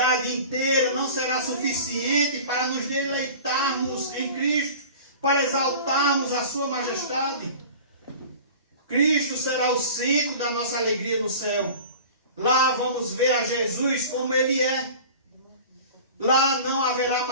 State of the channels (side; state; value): both; inverted; correlation -0.39